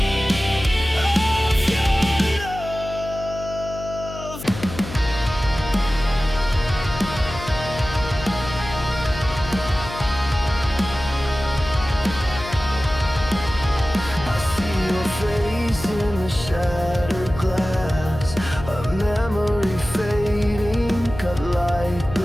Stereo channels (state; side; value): noise; left; hum, 11 dB below the sound